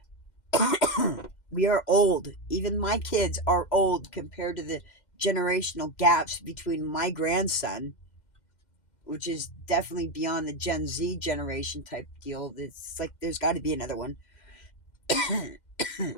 We are old. Even my kids are old compared to the generational gaps between my grandson, which is definitely beyond the Gen Z generation type deal. It's like there's got to be another one.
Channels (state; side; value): late; right; 2.1 ms